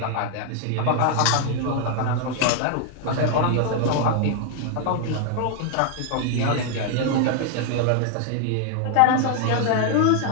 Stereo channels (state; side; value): different; both; correlation 0.00